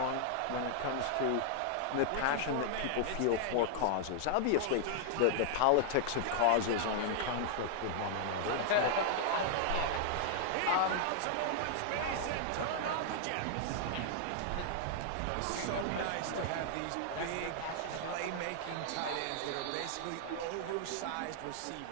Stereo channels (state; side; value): different; both; correlation -0.01